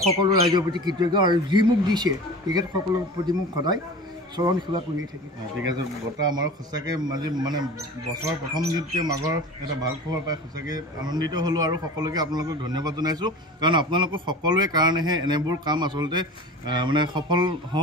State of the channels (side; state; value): both; normal; correlation 0.36